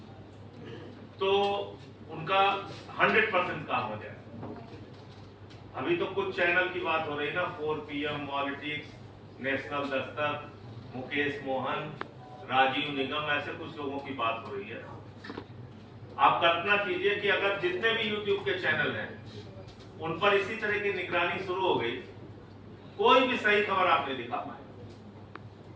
तो उनका 100% काम हो जाए। अभी तो कुछ चैनल की बात हो रही है ना, 4PM politics, national Dastak, Mukesh Mohan, Rajiv निगम, ऐसे कुछ लोगों की बात हो रही है। आप कल्पना कीजिए कि अगर जितने भी यूट्यूब के चैनल हैं उन पर इसी तरह की निगरानी शुरू हो गई, कोई भी सही खबर आप नहीं दिखा पाए।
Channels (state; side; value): identical; both; correlation 1.00